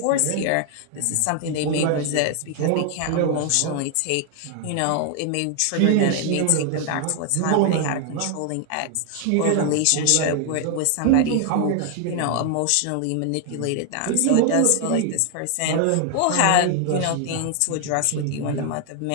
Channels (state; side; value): different; both; correlation 0.00